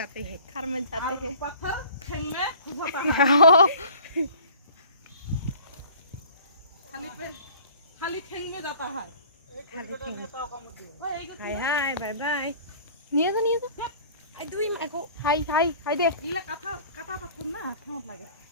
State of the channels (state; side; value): inverted; both; correlation -0.48